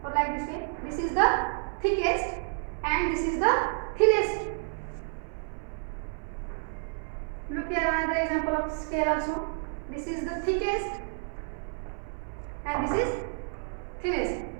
or like this way. This is the thickest and this is the thinnest. Look here, another example of scale also. This is the thickest and this is thinnest.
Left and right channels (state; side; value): silent; left; 58 dB below the other